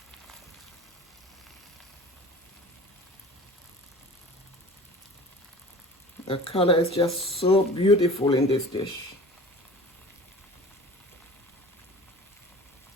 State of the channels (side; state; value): both; normal; correlation 0.42